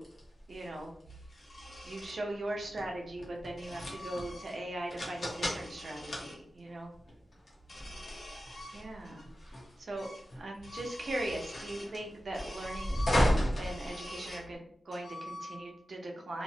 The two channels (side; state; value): both; normal; correlation 0.93